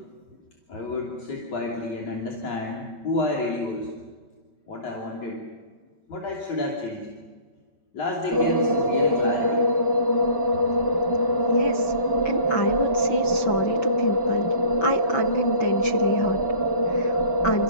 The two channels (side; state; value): right; late; 5.2 ms